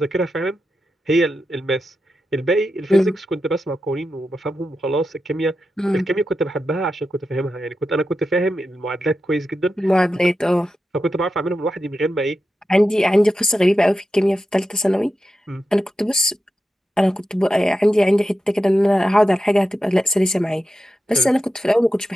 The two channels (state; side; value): normal; both; correlation 0.89